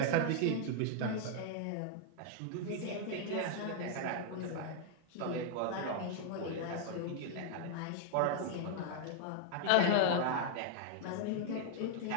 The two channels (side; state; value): both; different; correlation 0.00